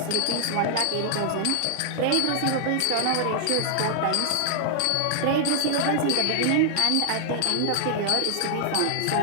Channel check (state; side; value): different; both; correlation -0.01